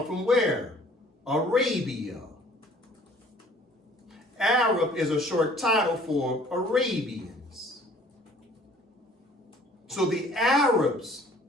from where? Arabia. Arab is a short title for Arabians. So the Arabs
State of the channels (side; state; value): both; normal; correlation 0.54